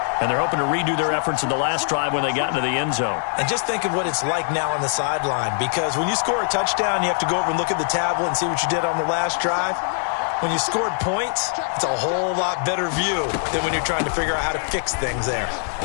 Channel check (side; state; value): right; silent; digital silence